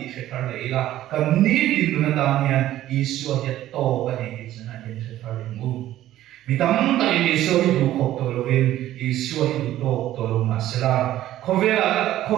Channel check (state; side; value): quieter; left; 13.6 dB